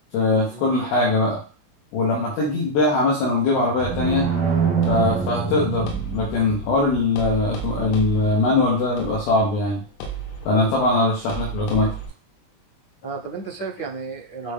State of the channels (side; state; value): right; late; 19 ms